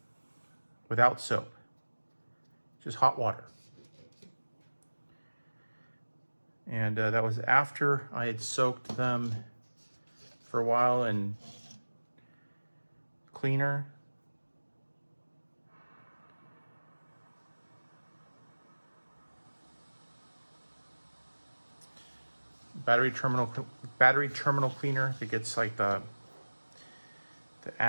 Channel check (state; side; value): inverted; both; correlation -1.00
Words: without soap, just hot water. And that was after I had soaked them for a while in cleaner. Battery terminal cleaner that gets like the